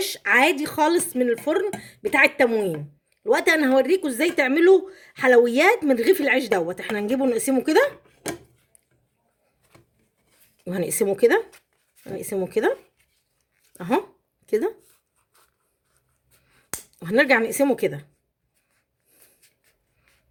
عادي خالص من الفرن بتاع التموين. الوقت انا هوريكم ازاي تعملوا حلويات من رغيف العيش دوت. احنا هنجيبه نقسمه كده، وهنقسمه كده، هنقسمه كده اهو كده، وهنرجع نقسمه كده.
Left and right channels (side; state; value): both; identical; correlation 1.00